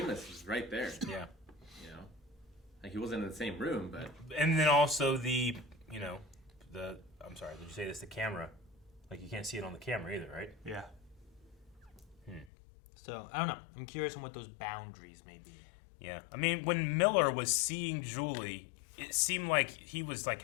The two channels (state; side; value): drops out; right; at 12.5 s